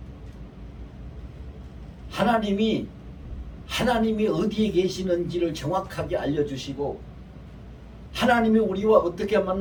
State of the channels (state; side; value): identical; both; correlation 1.00